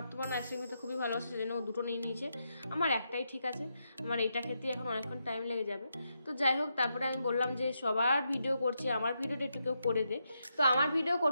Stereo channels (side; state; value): both; inverted; correlation -0.83